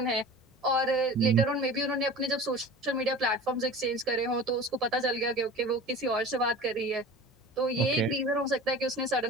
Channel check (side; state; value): both; normal; correlation 0.37